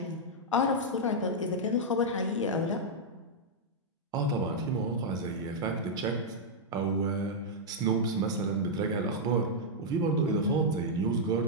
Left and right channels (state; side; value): normal; both; correlation -0.05